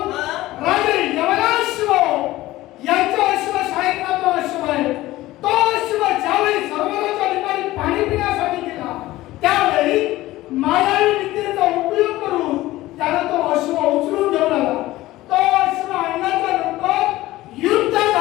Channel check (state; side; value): quieter; right; 17.1 dB